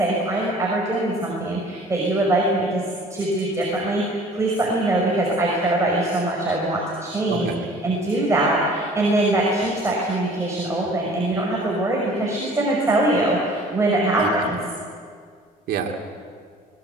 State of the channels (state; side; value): normal; both; correlation 0.50